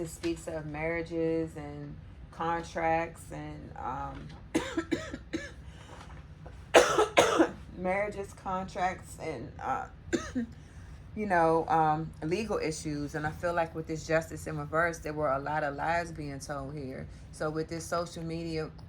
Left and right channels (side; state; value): both; identical; correlation 1.00